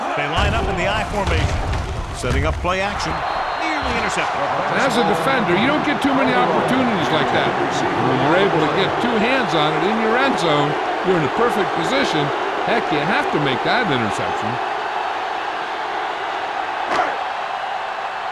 They line up in the I formation, setting up play action. Nearly intercepted. As a defender, you don't get too many opportunities like that. When you're able to get 2 hands on it in your end zone, you're in a perfect position. Heck, you have to make that interception.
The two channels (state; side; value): identical; both; correlation 1.00